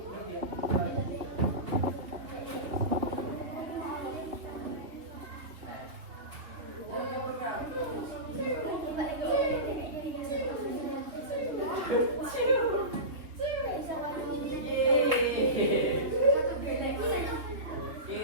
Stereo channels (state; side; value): late; left; 3.4 ms